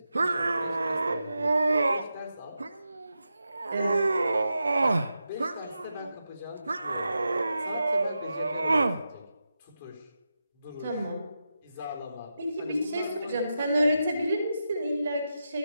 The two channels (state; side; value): inverted; both; correlation -0.89